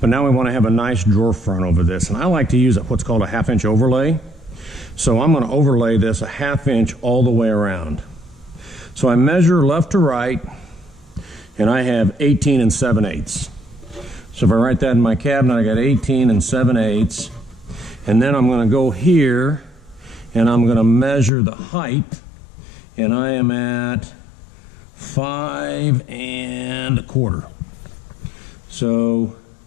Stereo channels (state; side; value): drops out; right; at 21.3 s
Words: but now we want to have a nice drawer front over this. And I like to use what's called a 1/2 inch overlay. So I'm going to overlay this a 1/2 inch all the way around. So I measure left to right and I have 18 7/8. So if I write that in my cabinet, I got 18 7/8. And then I'm going to go here and I'm going to measure the height. And I am at 5 1/4. So